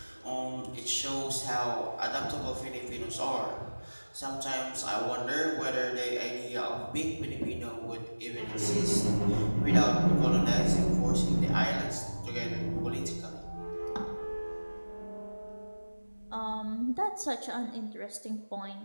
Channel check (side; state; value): both; inverted; correlation -1.00